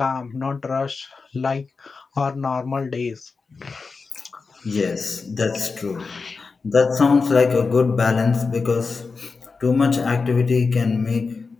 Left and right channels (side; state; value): right; quieter; 4.5 dB